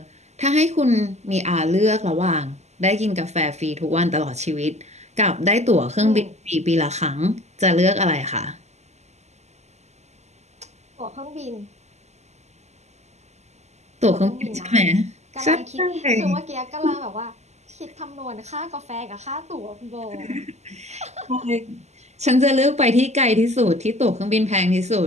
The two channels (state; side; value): late; left; 0.33 ms